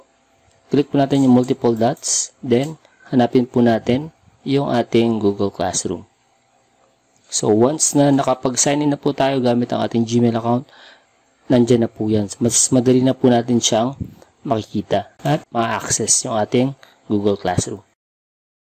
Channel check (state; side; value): identical; both; correlation 1.00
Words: Click po natin yung multiple dots, then hanapin po natin yung ating Google Classroom. So once na nakapag-sign in na po tayo gamit ang ating Gmail account, nandyan na po yan. Mas madali na po natin siyang makikita at ma-access yung ating Google Classroom.